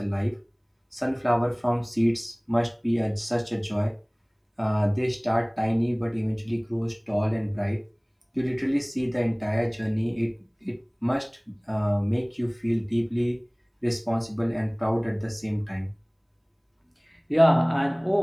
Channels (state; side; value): identical; both; correlation 1.00